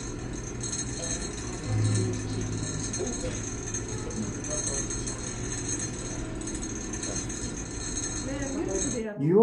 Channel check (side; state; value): both; identical; correlation 1.00